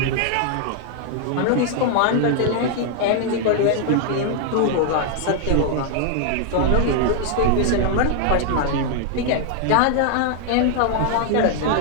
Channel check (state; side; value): different; both; correlation 0.00